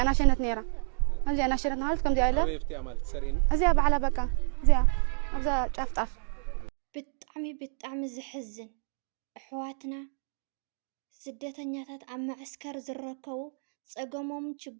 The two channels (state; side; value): silent; left; digital silence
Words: أنا شنت نيرة خمزي أنا شنت نهارت كم دي ألا يفتي أمالك سرين أزيا بعلى بكا زيا أبزا طف بتعمي زحزن أحواتنا ስደተኛታት ኣብ ማዕስከር ዝርከቡ ፀገሞምን